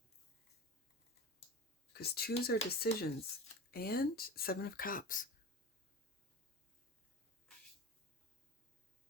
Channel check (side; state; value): both; normal; correlation 0.31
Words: Because twos are decisions. And Seven of Cups.